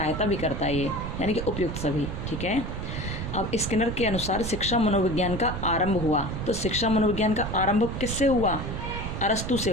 भी करता है ये, यानी कि उपयुक्त सभी, ठीक है। अब स्किनर के अनुसार शिक्षा मनोविज्ञान का आरंभ हुआ। तो शिक्षा मनोविज्ञान का आरंभ किससे हुआ? अरस्तु से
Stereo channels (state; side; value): noise; right; rumble, 5 dB below the sound